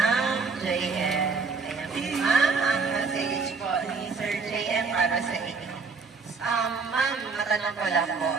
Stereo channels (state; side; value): quieter; left; 4.7 dB